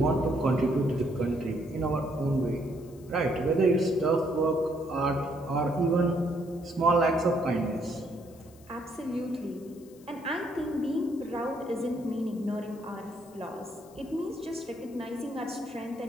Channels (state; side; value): noise; left; hiss, 26 dB below the sound